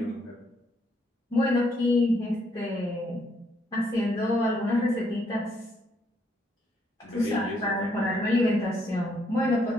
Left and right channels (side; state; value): both; normal; correlation 0.72